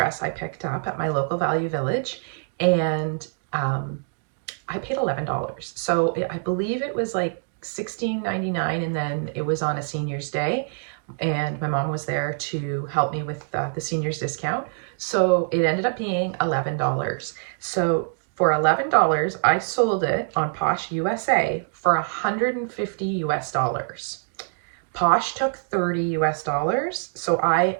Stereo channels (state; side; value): silent; left; digital silence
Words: I picked up at my local Value Village, and I paid $11. So I believe it was like $16.99, and then it was on a senior's day, and my mom was there to help me with the senior's discount. So it ended up being $11. So for $11, I sold it on Posh USA for $150 US. Posh took 30 US dollars. So I